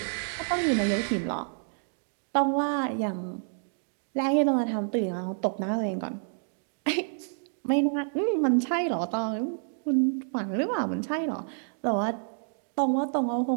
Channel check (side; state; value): left; silent; digital silence